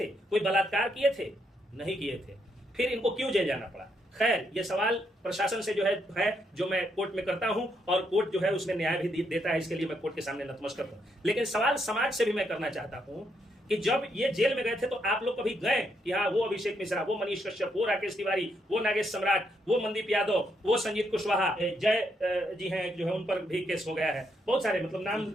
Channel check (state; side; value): normal; both; correlation 0.77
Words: कोई बलात्कार किए थे, नहीं किए थे, फिर इनको क्यों जेल जाना पड़ा। खैर, ये सवाल प्रशासन से जो है जो मैं कोर्ट में करता हूं और कोर्ट जो है उसमें न्याय भी देता है, इसके लिए मैं कोर्ट के सामने नतमस्तक हूं। लेकिन सवाल समाज से भी मैं करना चाहता हूं कि जब ये जेल में गए थे तो आप लोग कभी गए कि हाँ वो अभिषेक मिश्रा, वो मनीष कश्यप, वो राकेश तिवारी, वो नागेश सम्राट, वो मनदीप यादव, वो संजीत कुशवाहा, जय जी हैं जो है उन पर भी केस हो गया है, बहुत सारे, मतलब नाम